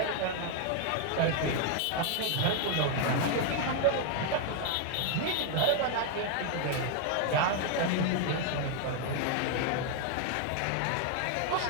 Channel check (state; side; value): different; both; correlation 0.01